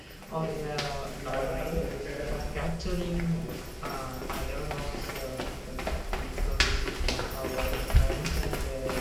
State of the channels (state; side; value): identical; both; correlation 1.00